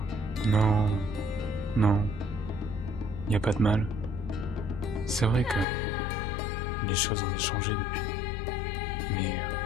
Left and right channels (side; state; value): right; drops out; at 5.7 s